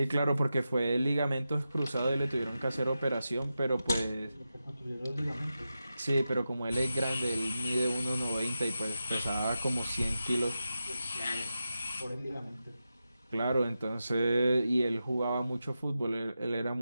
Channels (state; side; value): inverted; both; correlation -0.91